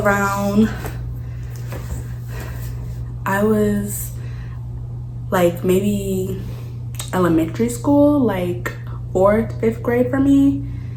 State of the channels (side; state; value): both; identical; correlation 1.00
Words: I was like maybe elementary school, like 4th, 5th grade for me.